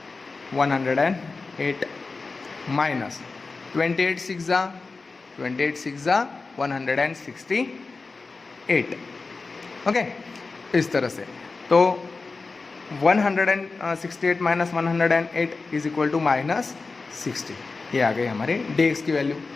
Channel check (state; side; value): quieter; right; 4.0 dB